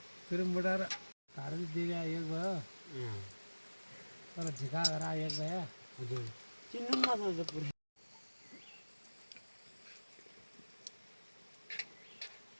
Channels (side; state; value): both; inverted; correlation -1.00